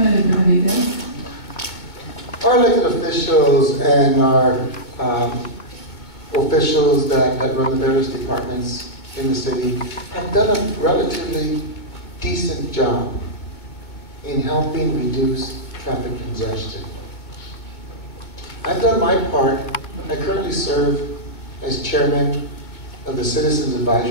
Our elected officials and our officials that run the various departments in the city have done a relatively decent job in helping reduce traffic congestion. I've done my part. I currently serve as chairman of the Citizens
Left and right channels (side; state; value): right; late; 2.2 ms